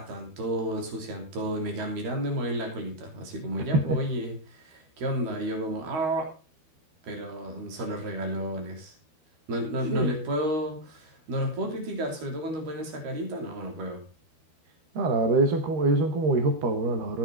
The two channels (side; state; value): left; late; 13 ms